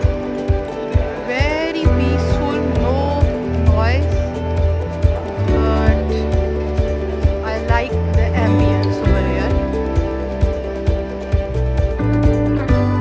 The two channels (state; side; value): identical; both; correlation 1.00